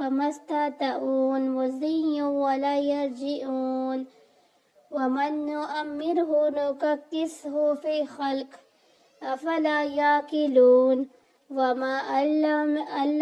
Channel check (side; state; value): both; identical; correlation 1.00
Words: استطاعوا مضيا ولا يرجعون ومن نؤمره نككسه في خلق أفلا يعقلون وما